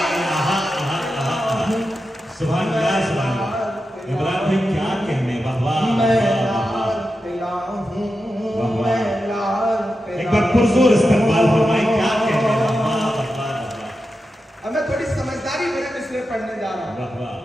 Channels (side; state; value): both; normal; correlation 0.90